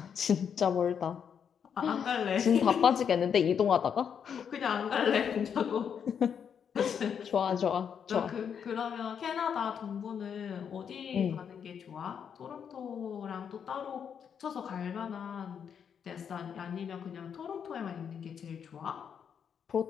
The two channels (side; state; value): right; quieter; 7.6 dB